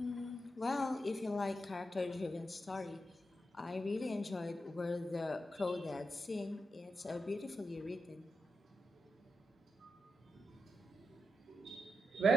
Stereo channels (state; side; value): normal; both; correlation 0.86